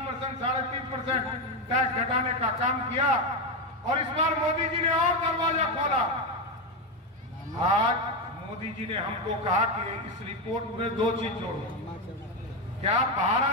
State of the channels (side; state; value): both; normal; correlation 0.09